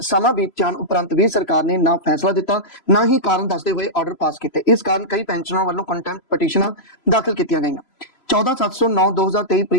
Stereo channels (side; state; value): right; late; 3.0 ms